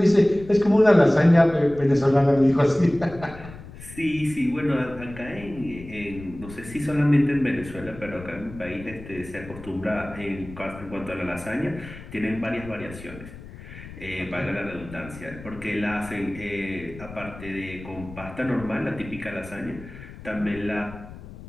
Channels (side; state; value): left; noise; rumble, 15 dB below the sound